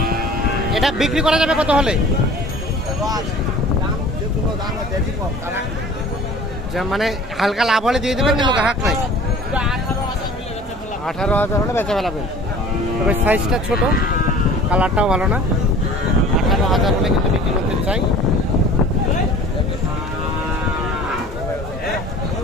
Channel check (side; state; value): both; normal; correlation 0.45